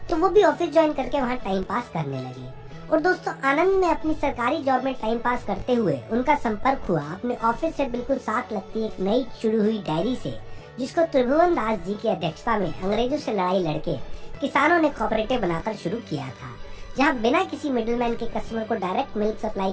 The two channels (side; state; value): both; identical; correlation 1.00